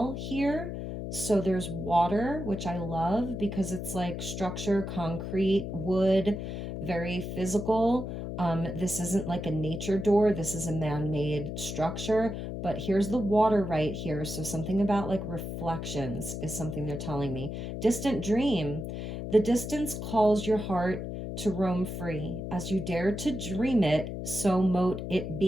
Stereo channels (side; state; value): left; noise; hum, 6 dB below the sound